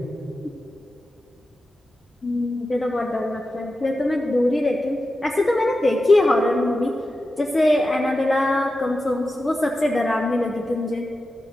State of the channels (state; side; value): normal; both; correlation 0.92